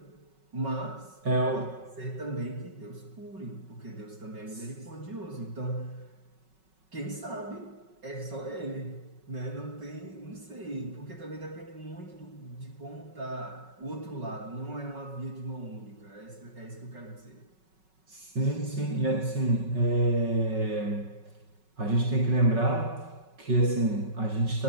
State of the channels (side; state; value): left; late; 5.4 ms